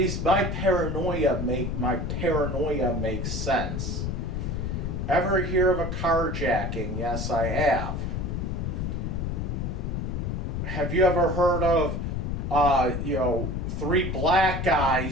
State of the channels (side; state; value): left; noise; rumble, 2 dB below the sound